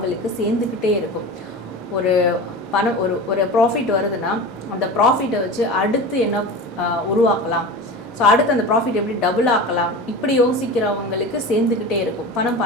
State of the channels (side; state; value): both; normal; correlation 0.31